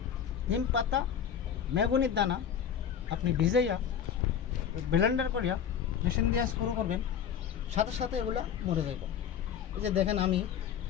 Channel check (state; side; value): quieter; right; 8.3 dB